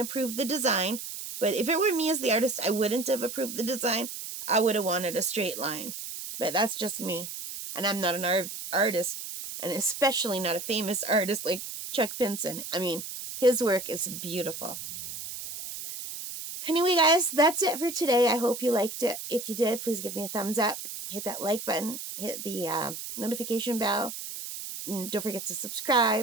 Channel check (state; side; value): noise; right; hiss, 8 dB below the sound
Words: the design. But if it were me as the artist, I wouldn't have approved the design. I would have wanted a straight line. But that's just me. And I'm not an artist. And especially not a famous artist like Chuck Pinson. I mean, his work is beautiful. Anyway, guys, that's it for today. I hope you liked it. If you did, please give me a thumbs up. Hit that like button. Hit the notification bell. And don't forget to